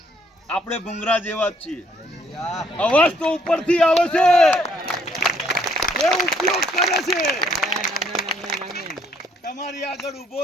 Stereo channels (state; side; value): normal; both; correlation 0.66